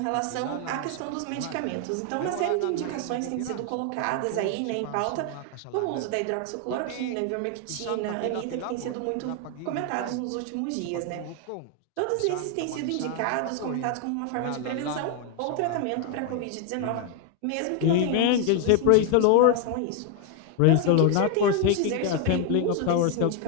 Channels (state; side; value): different; both; correlation 0.01